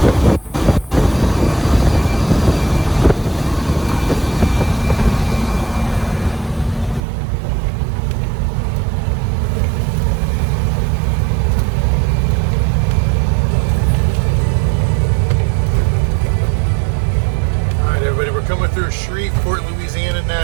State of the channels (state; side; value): drops out; left; at 7.0 s